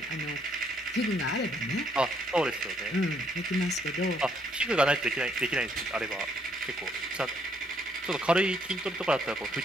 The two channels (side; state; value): both; normal; correlation 0.70